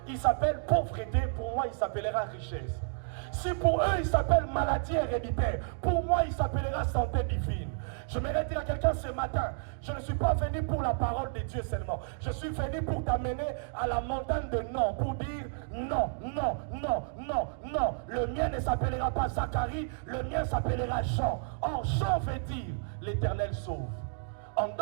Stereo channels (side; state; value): left; silent; digital silence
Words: il s'appelle pauvreté, pour moi, il s'appellera richesse. Si pour eux, il s'appelle maladie héréditaire, pour moi, il s'appellera santé divine. Je vais dire à quelqu'un ce matin, je ne suis pas venu pour la parole de Dieu seulement. Je suis venu pour t'amener à la montagne de non, pour dire non, non, non, non, non. Le mien ne s'appellera pas Zacharie, le mien s'appellera Jean. Or, Jean veut dire l'Éternel sauve. En